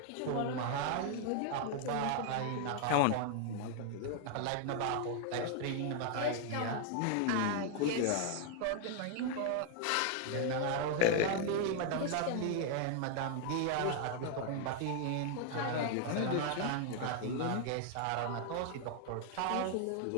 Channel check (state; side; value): different; both; correlation 0.00